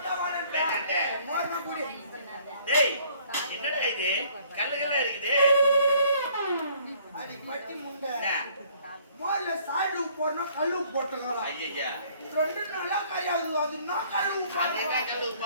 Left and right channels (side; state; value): both; inverted; correlation -0.59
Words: வரேன். வேண்டாண்டே. மோர்னா குடி. டேய் என்னடா இது? கல்லுகளா இருக்குது. அடி பட்டி முண்டை. என்ன? மோர்ல சாடு போறனா கல்லு போட்டுங்கலாம். ஐயய்யா. ரெண்டு நாளா கையாது அதுனா கல்லு அதே காய்ச்சல்